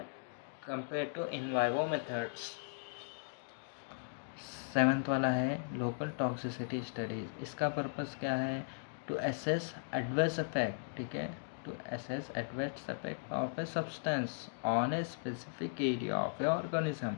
compare to in vivo methods. 7th वाला है लोकल टॉक्सिसिटी स्टडीज। इसका पर्पस क्या है, टू एसेस एडवर्स इफेक्ट। ठीक है, to assess adverse effect of a substance on a specific area of a organism.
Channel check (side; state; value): right; silent; digital silence